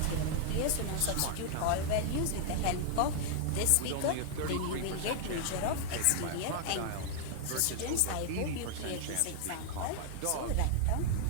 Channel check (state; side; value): different; both; correlation 0.00